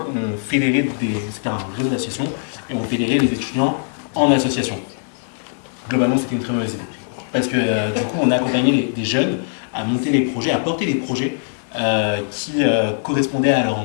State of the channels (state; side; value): silent; right; digital silence